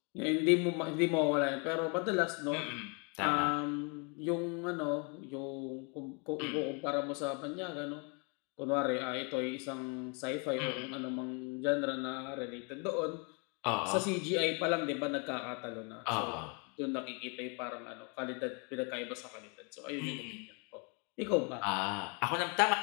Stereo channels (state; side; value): quieter; right; 34.3 dB